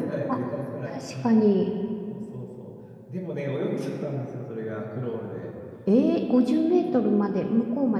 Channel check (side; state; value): both; identical; correlation 1.00